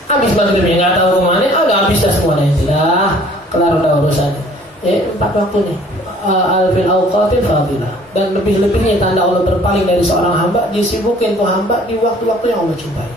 habis maghribnya nggak tahu kemana, udah habis dah semuanya, sudah kelar udah urusannya. 4 waktu nih, al-fil awqatil fadilah, dan lebih-lebihnya tanda Allah berpaling dari seorang hamba, disibukin tuh hamba di waktu-waktu yang Allah cintai.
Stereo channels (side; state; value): both; normal; correlation 0.54